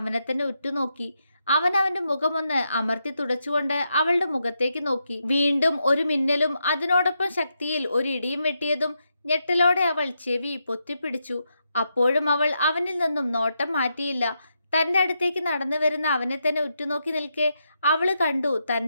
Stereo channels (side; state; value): both; inverted; correlation -0.83